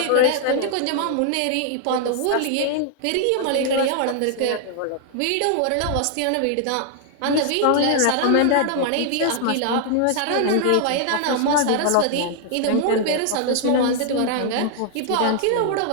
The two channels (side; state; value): both; different; correlation 0.00